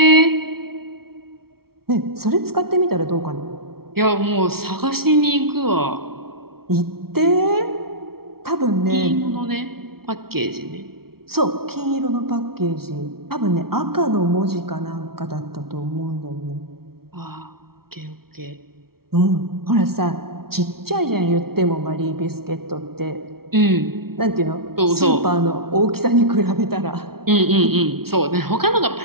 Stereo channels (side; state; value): left; late; 0.94 ms